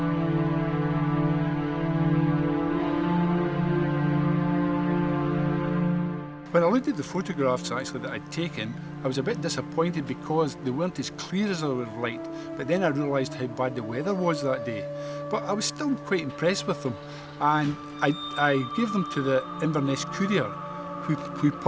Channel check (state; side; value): identical; both; correlation 1.00